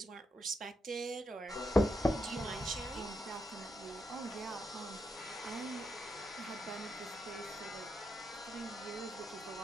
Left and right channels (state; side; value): normal; both; correlation 0.83